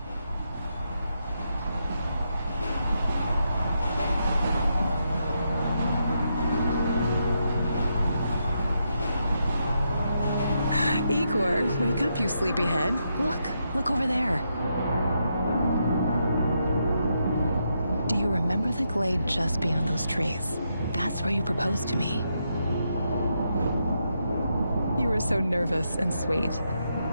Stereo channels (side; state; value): both; inverted; correlation -0.81